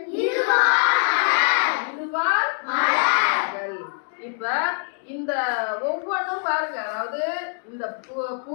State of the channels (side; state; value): right; silent; digital silence